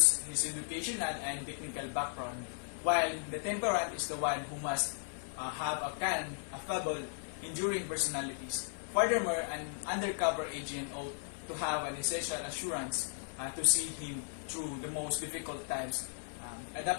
his educational and technical background, while the temperament is the one who must have a calm, affable, enduring personalities. Furthermore, an undercover agent ought to have an essential assurance to see him through the most difficult times,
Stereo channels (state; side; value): silent; right; 54 dB below the other